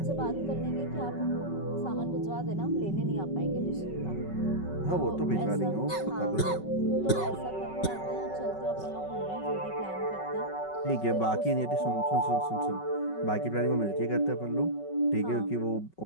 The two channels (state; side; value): late; right; 5.3 ms